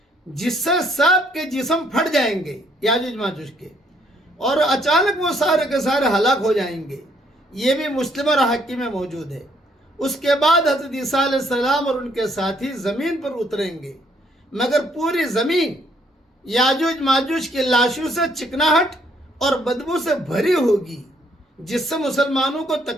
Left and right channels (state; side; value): normal; both; correlation 0.67